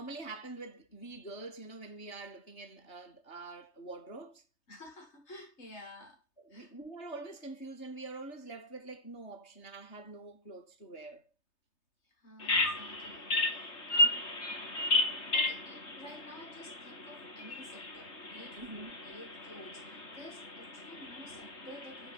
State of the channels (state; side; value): late; right; 3.3 ms